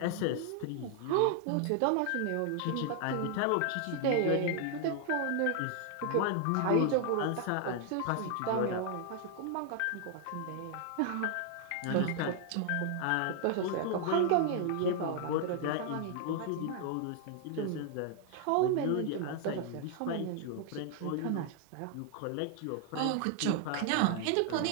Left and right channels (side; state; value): both; different; correlation 0.00